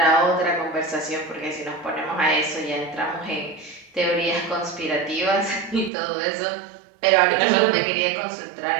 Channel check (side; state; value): left; drops out; at 5.9 s